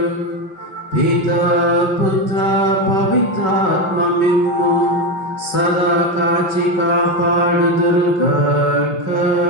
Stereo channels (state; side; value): late; right; 5.3 ms